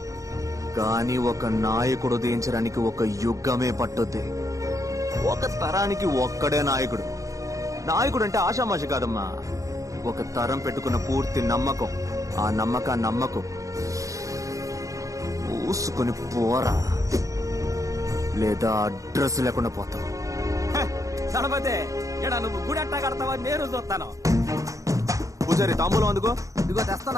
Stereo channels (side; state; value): left; late; 0.16 ms